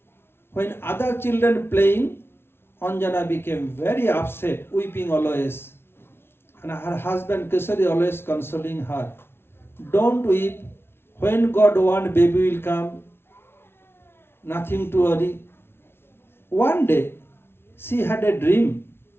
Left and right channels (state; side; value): late; right; 0.12 ms